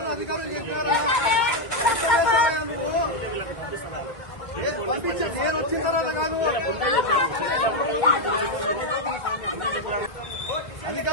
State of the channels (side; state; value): right; late; 2.1 ms